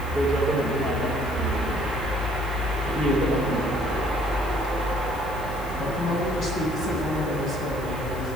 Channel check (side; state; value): left; noise; hiss, 19 dB below the sound